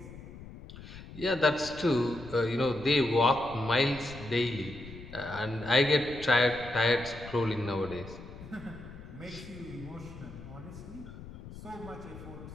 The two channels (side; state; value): left; noise; rumble, 14 dB below the sound